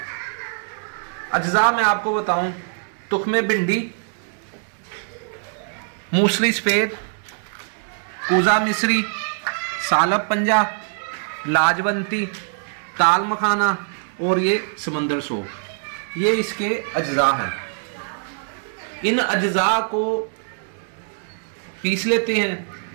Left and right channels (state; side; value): silent; left; digital silence